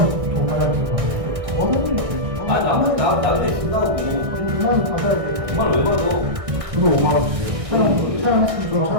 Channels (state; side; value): late; left; 1.6 ms